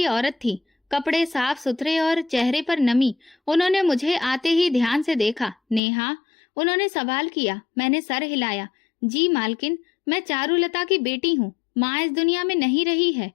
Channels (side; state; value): right; drops out; at 5.8 s